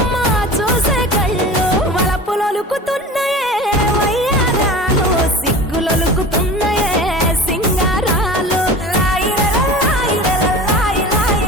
చూసే కళ్ళు వలపులొలుకుతున్నాయే వయ్యారాలు సిగ్గులొలుకుతున్నాయే సింగారాలు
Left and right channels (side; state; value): both; normal; correlation 0.35